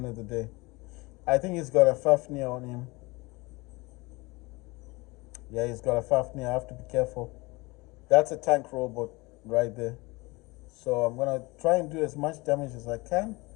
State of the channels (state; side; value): quieter; right; 24.0 dB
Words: of the day. I think he's got a Fafnir on him. Yeah, he's got a Fafnir. I have to be careful. That's a tank robot right there. So I'm gonna try and do as much damage as I can.